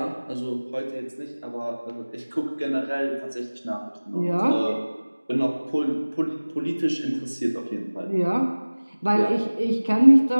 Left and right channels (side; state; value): both; inverted; correlation -1.00